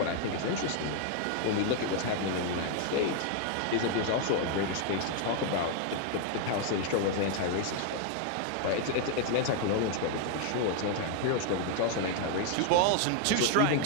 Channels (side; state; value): both; different; correlation 0.00